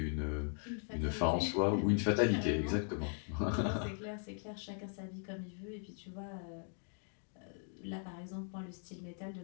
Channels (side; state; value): right; silent; 52 dB below the other